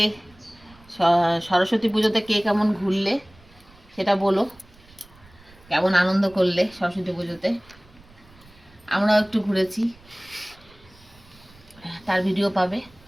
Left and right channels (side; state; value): right; noise; rumble, 26 dB below the sound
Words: সরস্বতী পুজোতে কে কেমন ঘুরলে সেটা বলো, কেমন আনন্দ করলে সরস্বতী পুজোতে। আমরাও একটু ঘুরেছি, তার ভিডিও পাবে।